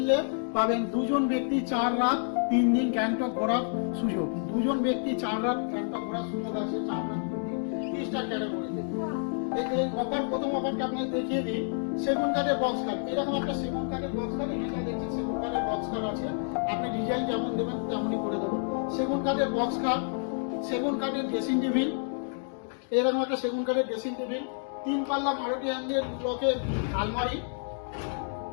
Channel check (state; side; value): silent; right; 58 dB below the other